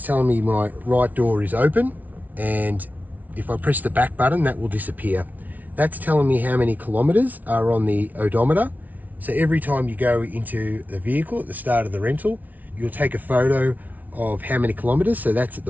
telling me my right door is open, and if I press the back button, that will disappear. That's telling me how many kilometers are on the odometer. So every time you go into the vehicle at the start of the rental, you'll take a photo of how many kilometers. So that's at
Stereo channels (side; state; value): left; late; 0.076 ms